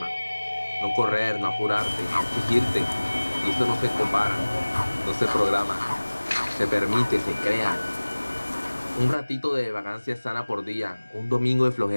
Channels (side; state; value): both; inverted; correlation -1.00